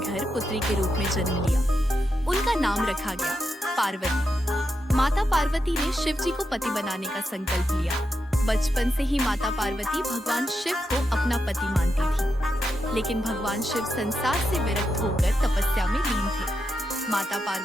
पुत्री के रूप में जन्म लिया। उनका नाम रखा गया पार्वती। माता पार्वती ने शिव जी को पति बनाने का संकल्प लिया। बचपन से ही माता पार्वती भगवान शिव को अपना पति मानती थी, लेकिन भगवान शिव संसार से विरक्त होकर तपस्या में लीन थे। माता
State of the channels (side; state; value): both; normal; correlation 0.86